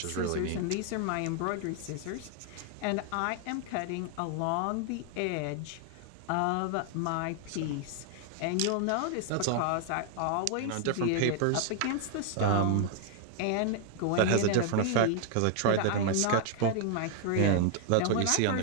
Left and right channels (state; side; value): different; both; correlation 0.00